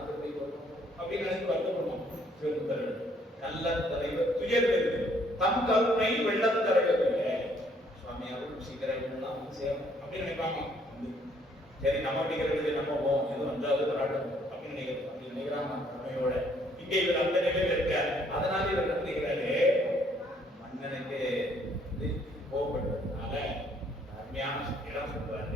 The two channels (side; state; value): both; normal; correlation 0.65